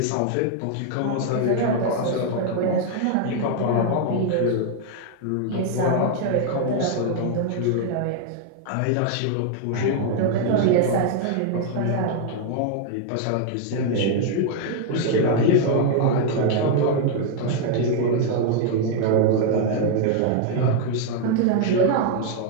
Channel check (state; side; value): different; both; correlation 0.00